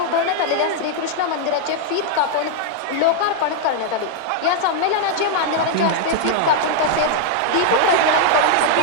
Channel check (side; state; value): both; different; correlation 0.00